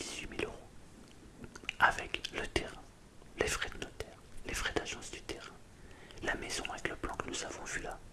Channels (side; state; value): both; identical; correlation 1.00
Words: 000 euros, avec le terrain, les frais de notaire, les frais d'agence du terrain, la maison avec le plan que nous avons vu là,